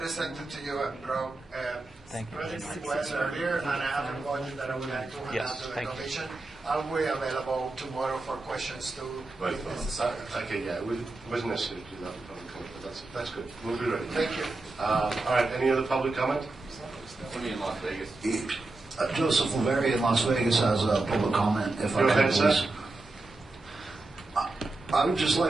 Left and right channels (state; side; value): quieter; left; 3.1 dB